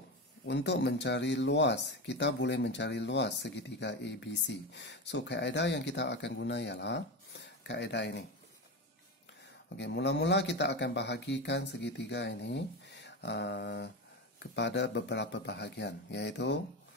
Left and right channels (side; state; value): both; normal; correlation 0.19